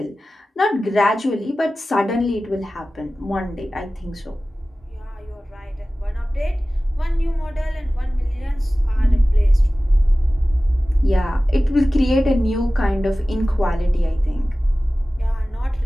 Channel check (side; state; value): both; normal; correlation 0.96